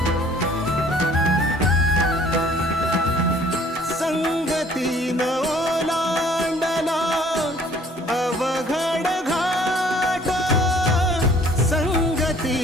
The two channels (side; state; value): both; normal; correlation 0.56